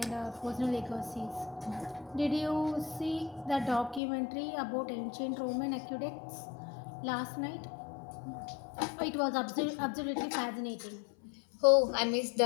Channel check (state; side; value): drops out; right; at 4.0 s